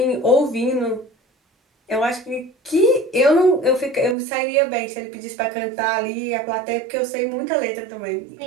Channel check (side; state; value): left; drops out; at 4.2 s